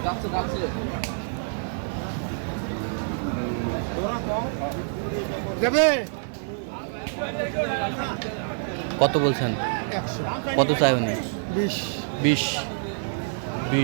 কত বলছেন? কত চাই উনি? 20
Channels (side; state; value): left; silent; 56 dB below the other